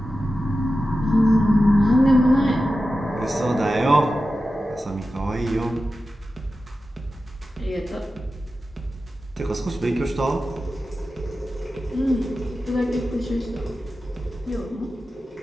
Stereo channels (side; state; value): both; normal; correlation 0.93